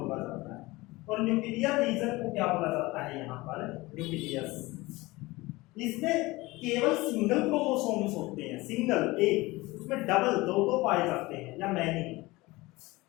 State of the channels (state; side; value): quieter; right; 21.2 dB